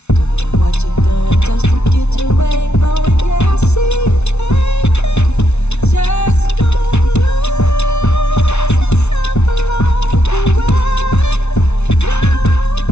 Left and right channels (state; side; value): late; right; 0.81 ms